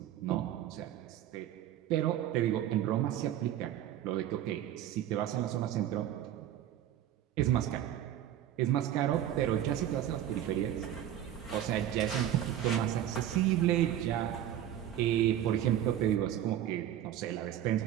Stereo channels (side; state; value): left; quieter; 11.5 dB